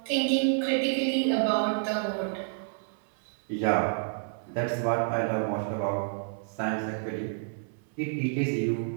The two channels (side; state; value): left; silent; 58 dB below the other